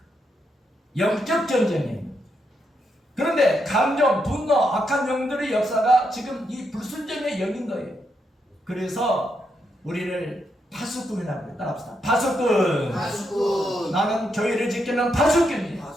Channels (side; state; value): both; normal; correlation 0.81